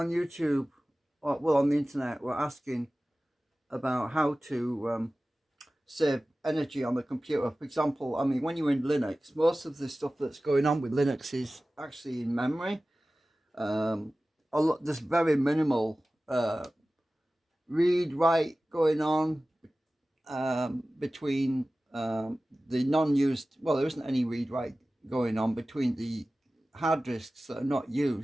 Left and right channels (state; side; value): normal; both; correlation 0.97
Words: or well, on the internet, were asking about how to save energy on the computer. For example, I mean, when you're in Linux, most of the stuff that's going on with Linux is actually in memory. There's very minimal read write going on between the non-used, well, there isn't any read write going on between the hard disks that are not